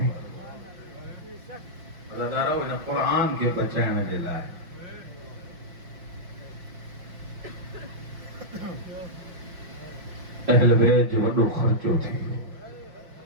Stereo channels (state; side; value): late; left; 5.6 ms